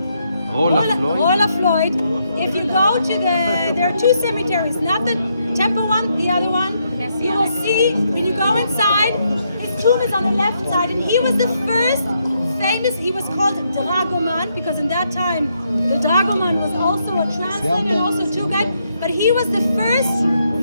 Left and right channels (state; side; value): inverted; both; correlation -0.77